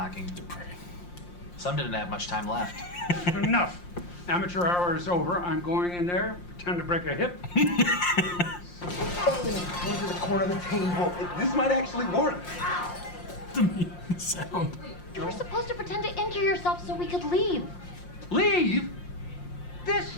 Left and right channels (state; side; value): late; right; 5.7 ms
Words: Some didn't have much time left. Enough. Amateur hour is over. I'm going in there, pretend to break a hip. Over the corner of the table. This might actually work. The sound. You were supposed to pretend to injure yourself so we could leave. Leave? This